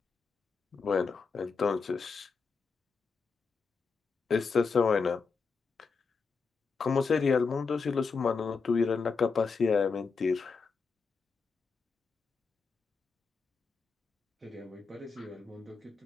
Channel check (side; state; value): right; quieter; 4.9 dB